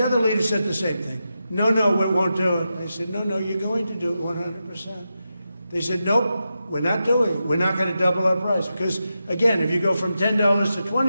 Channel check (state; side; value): inverted; both; correlation -0.89